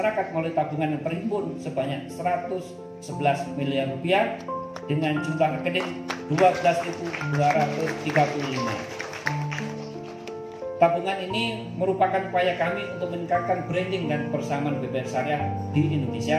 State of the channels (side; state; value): both; identical; correlation 1.00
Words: melalui tabungan yang terhimpun sebanyak 111 miliar rupiah dengan jumlah rekening 12.235. Tabungan ini merupakan upaya kami untuk meningkatkan branding dan kebersamaan BPR Syariah di